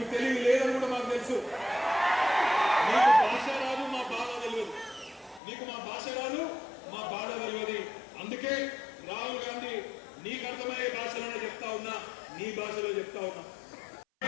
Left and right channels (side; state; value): right; drops out; at 5.4 s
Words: తెలుగు లేదని కూడా మాకు తెలుసు, నీకు భాష రాదు మా బాధ తెలియదు, నీకు మా భాష రాదు మా బాధ తెలియదు. అందుకే రాహుల్ గాంధీ నీకు అర్థమయ్యే భాషలోనే చెప్తా ఉన్నా, నీ భాషలో చెప్తా ఉన్నా.